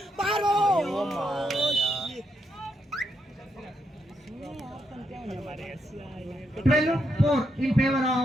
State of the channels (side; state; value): both; normal; correlation 0.80